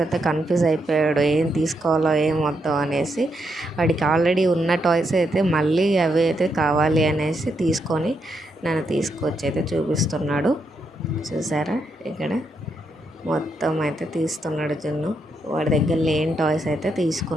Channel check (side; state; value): both; normal; correlation 0.80